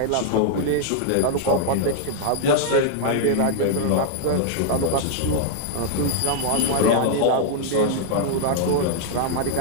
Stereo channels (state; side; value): different; both; correlation 0.00